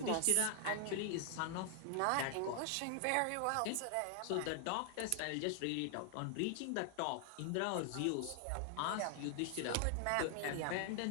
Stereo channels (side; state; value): both; different; correlation 0.00